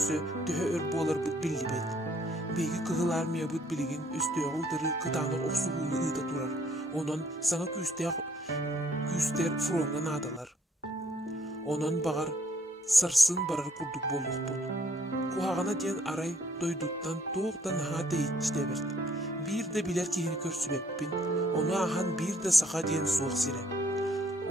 tühe ör bolar bud billi bet. Begi kıhılar miya bud biligin üstüye uldırı kıtağına oqsuğunu ıda turar. Onan sana küster fronga nadalar. Onan bağar sarsın barar kurduk bolluk bud. Kuhağına diyen aray doyduktan toğdan ha deyitçi debert. Bir de biler kihini körsübeppin, onu ahan bir de sağa diyen soğuk sire.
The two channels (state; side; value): normal; both; correlation 0.65